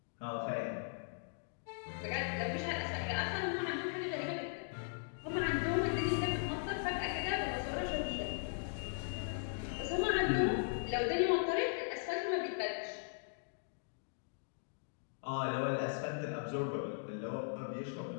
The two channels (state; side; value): silent; right; digital silence